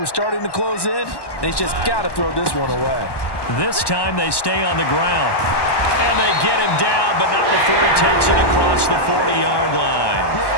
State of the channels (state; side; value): late; right; 1.1 ms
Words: was starting to close in, and he's just got to throw this one away. This time they stay on the ground. And they get him down, but not before he takes it across the 40-yard line.